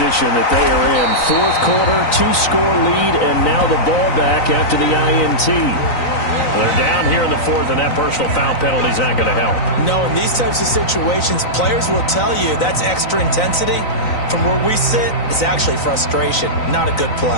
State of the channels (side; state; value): right; late; 3.9 ms